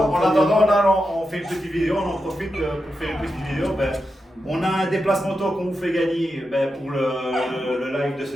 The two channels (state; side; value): normal; both; correlation 0.88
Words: attendant, là, on fait une petite vidéo. On en profite pour faire une petite vidéo. On a un déplacement auto qu'on vous fait gagner pour le live de